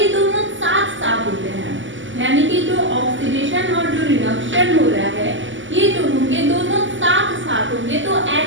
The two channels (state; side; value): late; left; 0.55 ms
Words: दोनों साथ साथ होते हैं, यानी कि जो ऑक्सीडेशन और जो रिडक्शन हो रहा है ये जो होंगे दोनों साथ साथ होंगे। तो